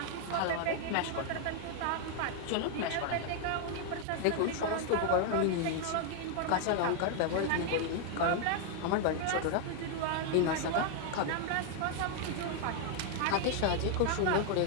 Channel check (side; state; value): both; different; correlation 0.00